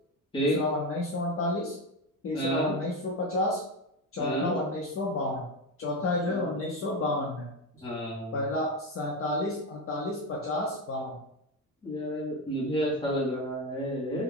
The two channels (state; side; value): normal; both; correlation 0.16